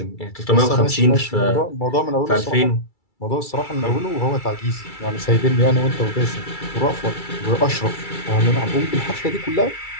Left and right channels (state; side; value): late; right; 2.3 ms